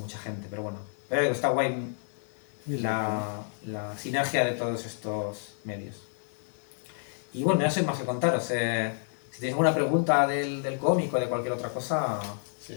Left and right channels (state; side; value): silent; right; digital silence